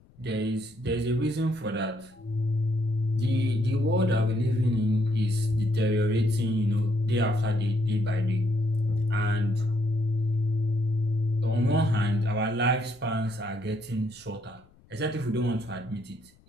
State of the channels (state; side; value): noise; left; rumble, 28 dB below the sound